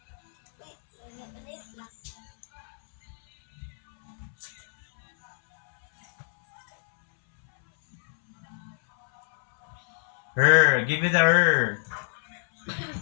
Her. Give me the her.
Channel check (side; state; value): right; silent; 60 dB below the other